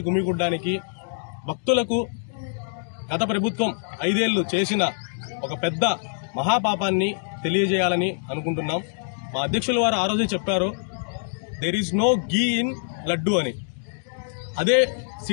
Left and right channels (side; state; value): right; silent; 60 dB below the other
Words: గుమిగూడడానికి భక్తులకు గత ప్రభుత్వం 5 ఏళ్లు చేసిన ఒక పెద్ద మహాపాపాన్ని తెలియజేయాలని అనుకుంటున్నాం. మా అధ్యక్షుల వారు ఆ రోజు చెప్పారు, there is no ghee in laddu అని. అదే